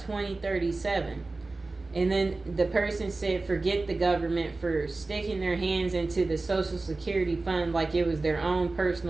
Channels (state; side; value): quieter; left; 3.4 dB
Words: And then the person said, forget the government for sticking their hands into the Social Security fund like it was their own